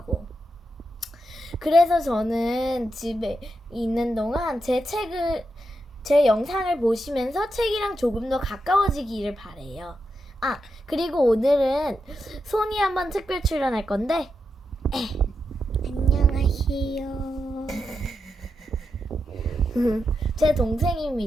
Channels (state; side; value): normal; both; correlation 0.86